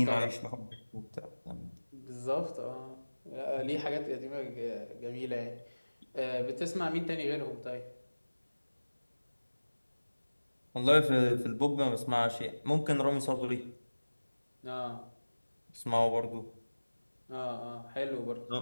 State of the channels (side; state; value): both; inverted; correlation -1.00